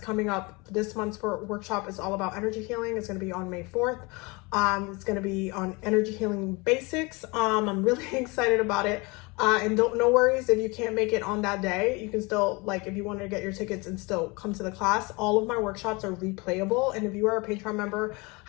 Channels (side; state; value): right; quieter; 26.6 dB